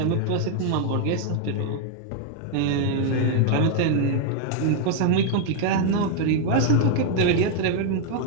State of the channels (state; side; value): different; both; correlation 0.00